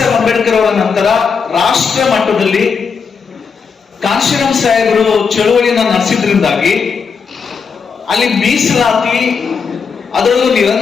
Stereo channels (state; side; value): quieter; right; 5.8 dB